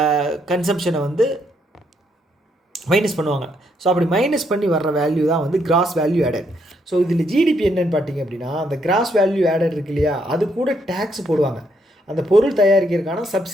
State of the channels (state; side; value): normal; both; correlation 0.74